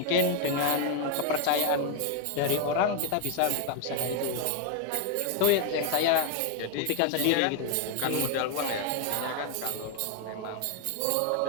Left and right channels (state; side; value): different; both; correlation 0.01